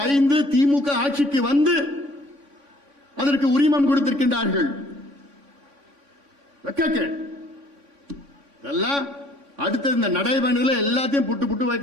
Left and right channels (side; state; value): left; late; 3.5 ms